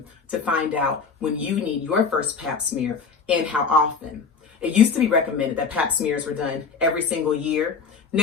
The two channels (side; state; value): right; quieter; 5.5 dB